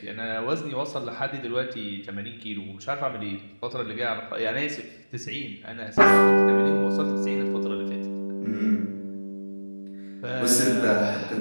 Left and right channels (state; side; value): inverted; both; correlation -1.00